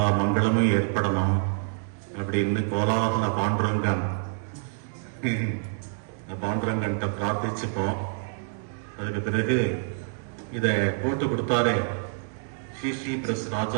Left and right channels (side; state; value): left; silent; digital silence